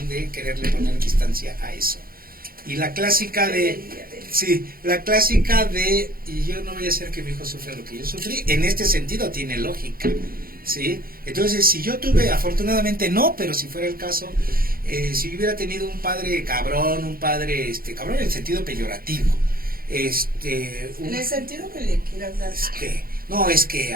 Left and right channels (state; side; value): late; left; 0.42 ms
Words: de quererle poner distancia a eso. Y la clásica de... Sí, la clásica de, y yo no voy a hacer que mi hijo sufra lo que yo sufrí, en este sentido tiene lógica, ¿sí? Entonces, si yo tuve, afortunadamente no, pero si fuera el caso, si yo hubiera tenido un padre cabrón, cabrón en el sentido peyorativo, En el sentido que le quieras dar. No, es que